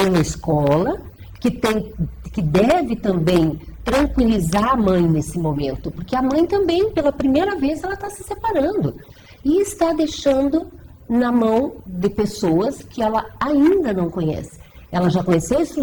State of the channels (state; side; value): identical; both; correlation 1.00